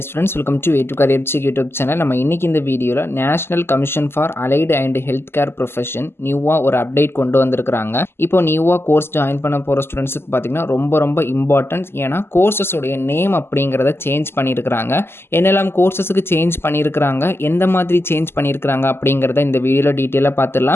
friends, welcome to A2 Career Check YouTube channel. நம்ம இன்னைக்கு இந்த வீடியோல national commission for allied and health care profession நியூவா ஒரு அப்டேட் கொண்டு வந்திருக்காங்க. இப்போ நியூவா கோர்ஸ் ஜாயின் பண்ண போற ஸ்டூடெண்ட்ஸ்க்கு பாத்தீங்கன்னா ரொம்ப இம்பார்ட்டன்ட். ஏன்னா கோர்சஸ் உடைய நேம் அப்படிங்கறத சேஞ்ச் பண்ணியிருக்காங்க. என்னெல்லாம் கோர்சஸ்க்கு சேஞ்ச் பண்ணியிருக்காங்க, எந்த மாதிரி சேஞ்ச் பண்ணியிருக்காங்க அப்படிங்கறத இந்த வீடியோல டீடைலா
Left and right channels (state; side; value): late; right; 0.12 ms